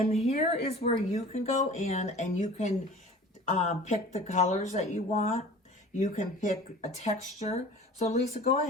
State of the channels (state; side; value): normal; both; correlation 0.43